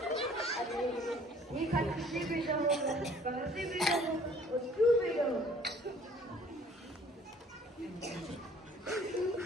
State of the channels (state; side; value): normal; both; correlation 0.55